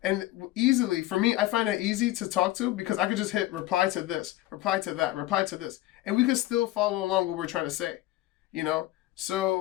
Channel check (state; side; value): quieter; right; 16.2 dB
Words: And easily, for me, I find it easy to talk to because I could just hit reply to this, reply to that, reply to this. And we could still follow along what we're trying to say,